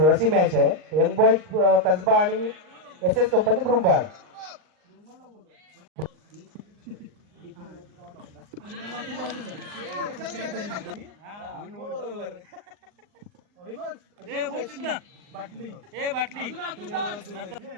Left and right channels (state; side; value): late; left; 39 ms